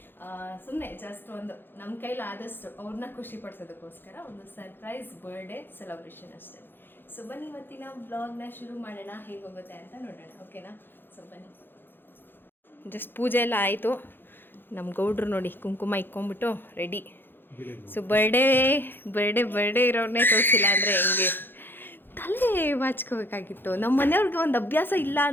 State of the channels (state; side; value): late; right; 0.10 ms